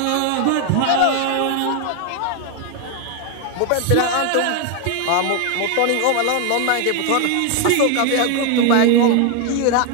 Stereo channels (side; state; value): both; different; correlation 0.01